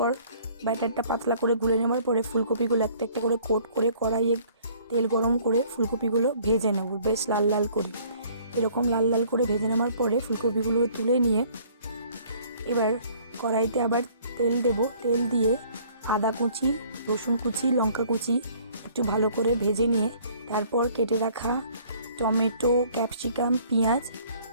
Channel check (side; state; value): both; inverted; correlation -0.57